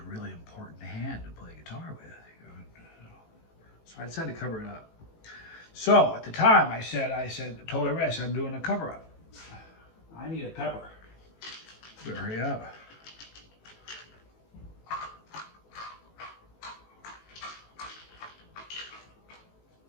really important hand to play guitar with. So I decided to cover it up. So at the time I told everybody, I said, I'm doing a cover-up. I need a pepper. Better hurry up.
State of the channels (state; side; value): late; right; 18 ms